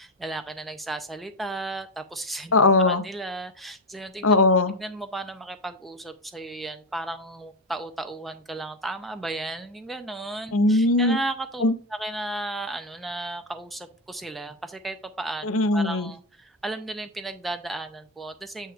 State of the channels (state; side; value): normal; both; correlation 0.14